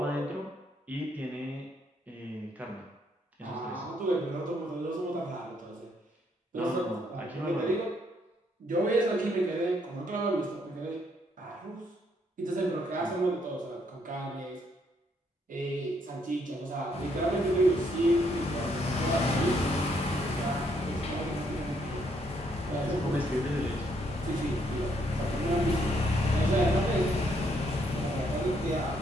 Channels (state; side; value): normal; both; correlation 0.71